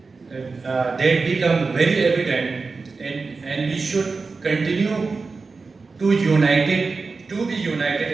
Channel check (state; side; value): quieter; left; 4.3 dB